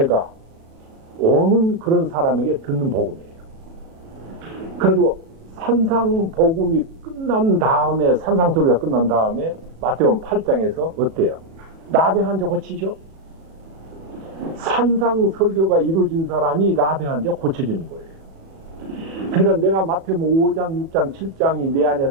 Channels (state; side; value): late; left; 37 ms